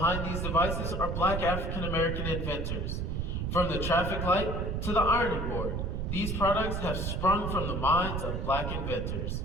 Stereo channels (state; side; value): noise; right; rumble, 2 dB below the sound